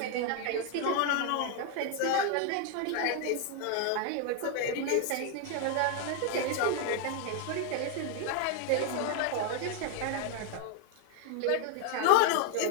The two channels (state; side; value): different; both; correlation 0.00